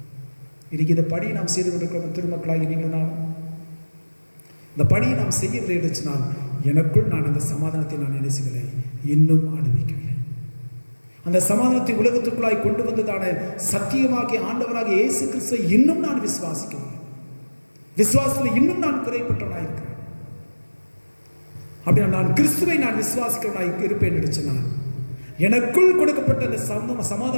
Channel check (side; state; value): both; inverted; correlation -1.00